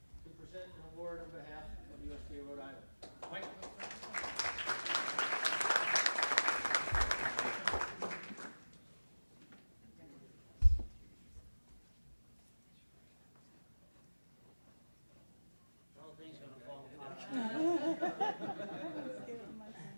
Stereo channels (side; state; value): both; inverted; correlation -1.00